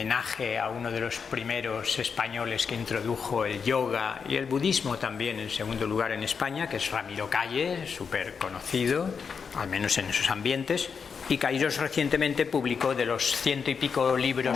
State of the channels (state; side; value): quieter; right; 6.0 dB